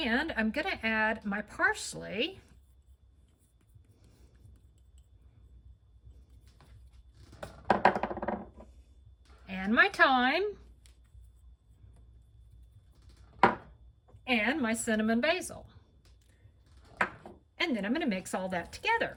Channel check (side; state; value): both; identical; correlation 1.00